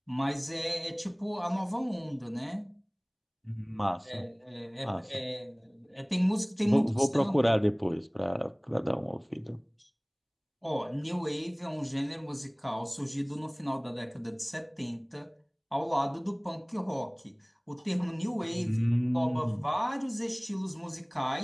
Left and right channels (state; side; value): identical; both; correlation 1.00